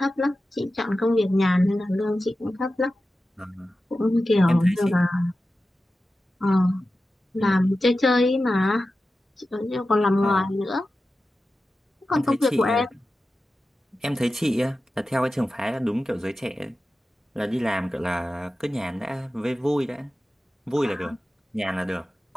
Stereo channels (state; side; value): normal; both; correlation 0.93